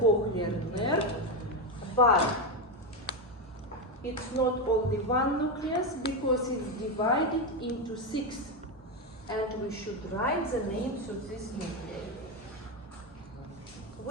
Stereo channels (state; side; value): normal; both; correlation 0.09